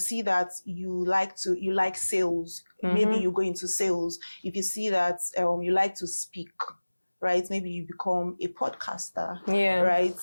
that you like sales, maybe you go into sales. If you see that you like to speak, right, maybe you become a podcaster, right?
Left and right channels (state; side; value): inverted; both; correlation -1.00